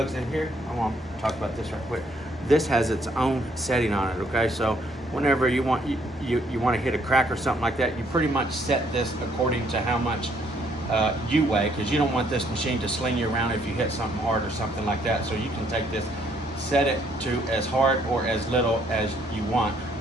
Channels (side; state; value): both; normal; correlation 0.68